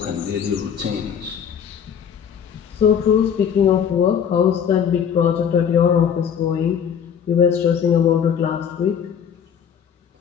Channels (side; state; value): right; quieter; 7.9 dB